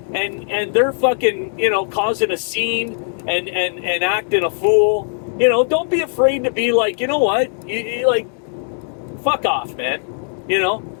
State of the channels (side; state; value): right; silent; digital silence